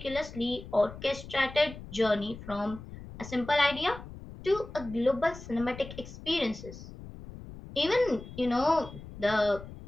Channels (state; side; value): noise; left; rumble, 14 dB below the sound